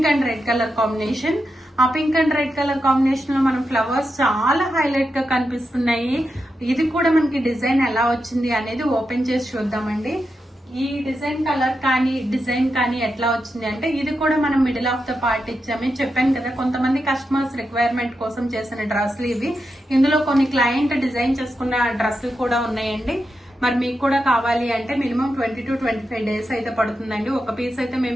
and red colour combination. ఆ pink and red colour combination లో మనం ఫ్లవర్స్ చాలా హైలైట్ గా కనిపిస్తున్నాయి. ఇది కూడా మనకి డిజైన్ ఎలా వచ్చింది అనేది ఓపెన్ చేసి చూద్దామండి. ఈ డిజైన్ కలర్ కానీ డిజైన్ కానీ ఎట్లా వచ్చింది అంటే ఇది కూడా మనం మిడిల్ ఆఫ్ ద పార్ట్ ఇచ్చామే. చెప్పాను కదా, కొంతమంది కస్టమర్స్ రిక్వైర్మెంట్ కోసం చేసిన డ్రెస్లు ఇవి. ఇందులో కొన్ని క్లయింట్ డిజైన్ చేసుకున్న డ్రెస్సులు కూడా ఉన్నాయండి. మరి మీకు కూడా కావాలి అంటే మినిమం 20 to 25 days అయితే పడుతుందండి. ఒక పీస్ అయితే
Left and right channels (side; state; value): both; normal; correlation 0.87